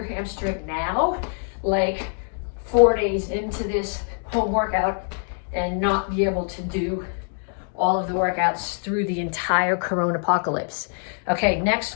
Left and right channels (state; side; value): silent; right; 62 dB below the other